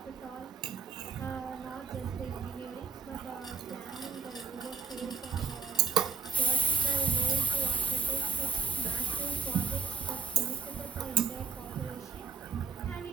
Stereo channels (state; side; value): quieter; left; 5.6 dB